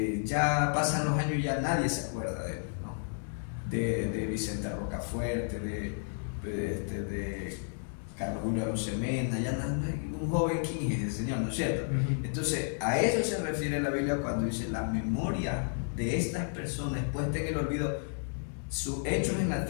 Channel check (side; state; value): right; silent; 56 dB below the other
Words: Ya pasan los años y ya nadie se acuerda de él, ¿no? De Vicente Rocafuerte, de Carlos Julio Arosemena, ya un joven, ¿quién es el Señor? ¿No es cierto? Entonces, a eso se refiere la Biblia cuando dice la memoria de estas personas puesta en el olvido, sus hechos en la